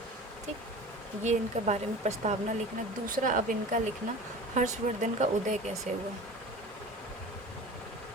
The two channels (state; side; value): normal; both; correlation 0.37